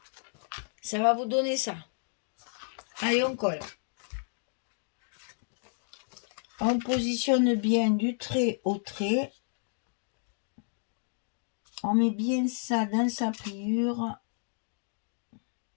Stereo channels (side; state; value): right; silent; digital silence